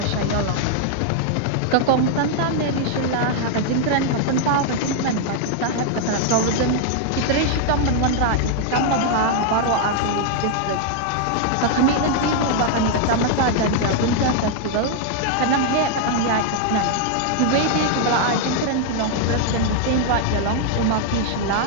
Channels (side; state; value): both; different; correlation 0.00